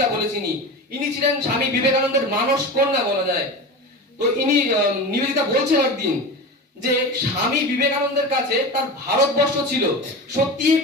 বলে চিনি। ইনি ছিলেন স্বামী বিবেকানন্দের মানস কন্যা বলা যায়। তো ইনি নিবেদিতা বলছেন একদিন যে স্বামী বিবেকানন্দের কাছে তার ভারতবর্ষ ছিল সত্যি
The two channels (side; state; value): both; normal; correlation 0.28